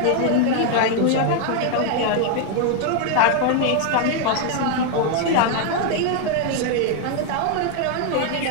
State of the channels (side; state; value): both; different; correlation 0.00